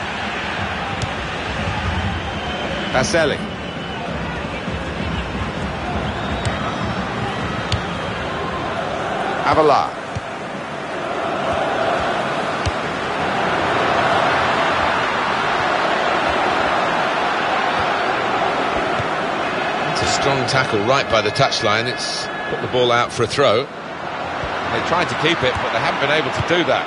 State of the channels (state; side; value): identical; both; correlation 1.00